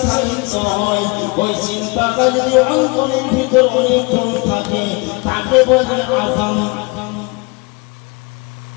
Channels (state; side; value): quieter; right; 27.6 dB